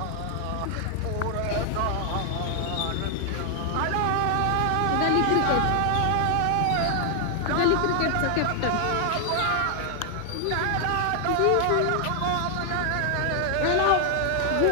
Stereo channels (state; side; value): different; both; correlation 0.00